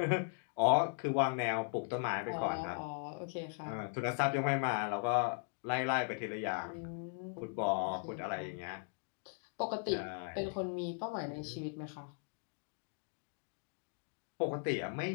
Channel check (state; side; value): silent; right; 52 dB below the other